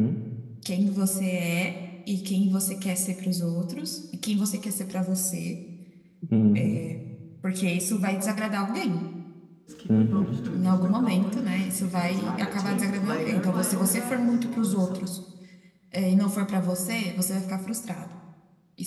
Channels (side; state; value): both; identical; correlation 1.00